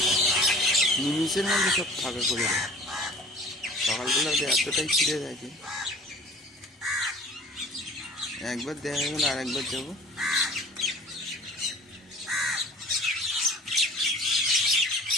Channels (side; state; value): both; normal; correlation 0.45